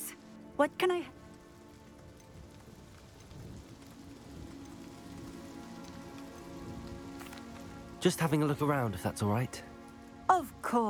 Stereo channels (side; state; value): both; identical; correlation 1.00